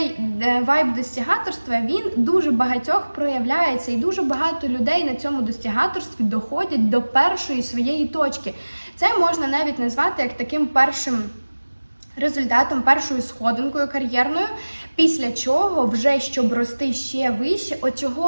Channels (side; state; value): both; inverted; correlation -1.00